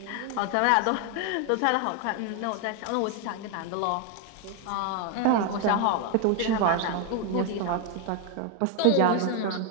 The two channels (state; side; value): different; both; correlation 0.01